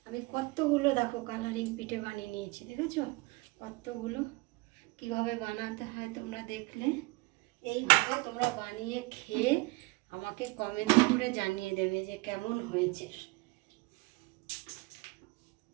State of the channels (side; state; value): left; quieter; 24.1 dB